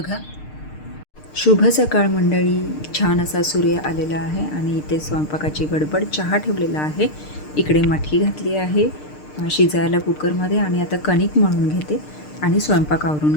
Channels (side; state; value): right; late; 6.6 ms